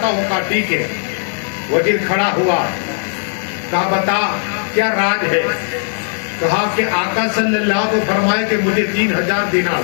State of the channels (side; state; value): right; silent; digital silence